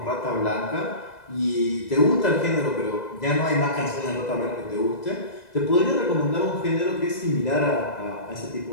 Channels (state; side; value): late; right; 2.0 ms